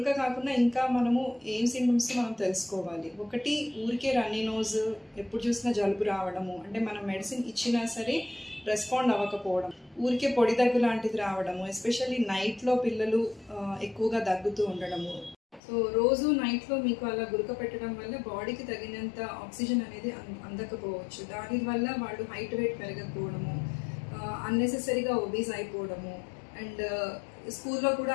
కాకుండా ఇంకా మనము ఏం సిమ్టమ్స్ మనం తెలుసుకోవాలి. ఒకటి, ఊరికే రన్నీ నోజ్, ఎప్పుడు చూసినా జలుబు రావడము, అంటే మనం మెడిసిన్ ఇచ్చినా సరే రెస్పాండ్ అవ్వకపోవడం, ఊరికే పొడి దగ్గు లాంటిది రావడము, ఎస్పెషల్లీ నైట్లో పిల్లలు ఎక్కువగా దగ్గుతూ ఉండడము. సో రోజు నైట్లో మీకు అలా గురక పెట్టడం వల్ల బాడీకి తగినంత ఆక్సిజన్ అనేది అందకపోవచ్చు. దానివల్ల వాళ్ళు హైట్ వెయిట్ పెరగకపోవడము, అన్నెసెసరీగా ఒబీస్ అయిపోవడము, అండ్ స్కూల్లో కూడా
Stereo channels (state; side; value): drops out; right; at 15.6 s